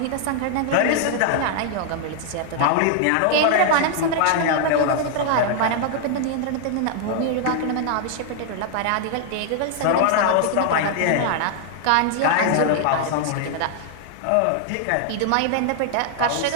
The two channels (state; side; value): different; both; correlation 0.00